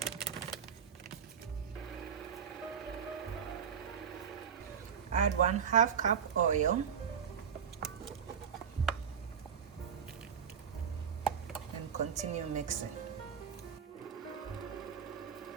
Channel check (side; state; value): left; quieter; 7.6 dB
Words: add 1/2 cup oil, and continue mixing.